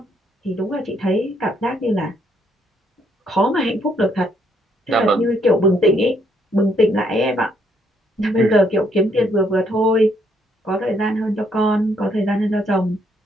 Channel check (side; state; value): both; normal; correlation 0.71